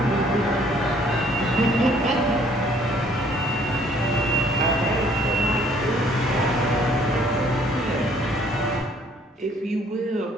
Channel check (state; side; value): normal; both; correlation 0.60